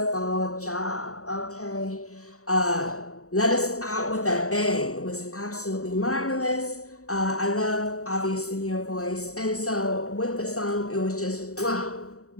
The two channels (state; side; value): late; right; 0.65 ms